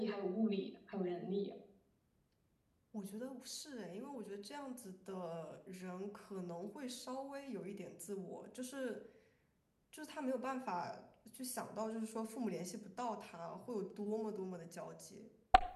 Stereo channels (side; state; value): both; identical; correlation 1.00